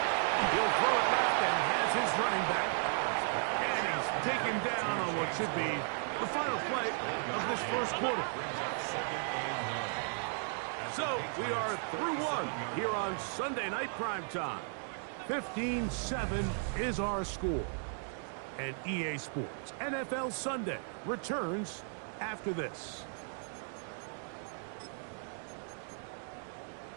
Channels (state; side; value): silent; left; 54 dB below the other